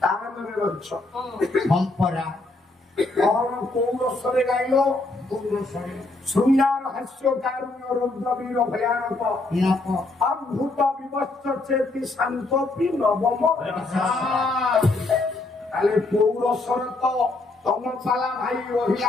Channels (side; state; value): right; quieter; 3.1 dB